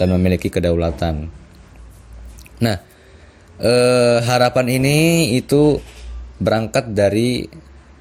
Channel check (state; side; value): identical; both; correlation 1.00